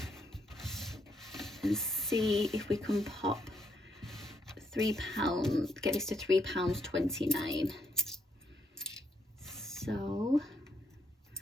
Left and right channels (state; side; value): normal; both; correlation 0.74